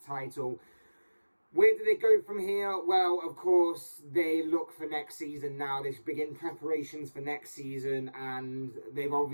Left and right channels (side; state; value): both; inverted; correlation -1.00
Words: title. Where do they go from here? Well, of course, they look for next season now. They begin preparations for next season, and they've